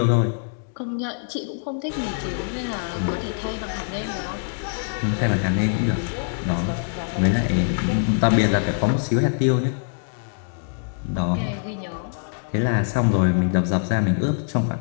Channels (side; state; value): right; silent; digital silence